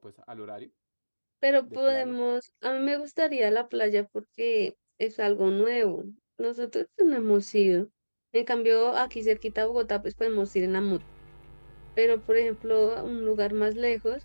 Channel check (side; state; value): both; inverted; correlation -1.00